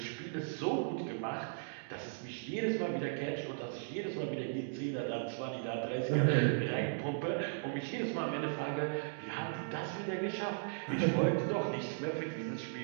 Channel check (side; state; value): left; silent; digital silence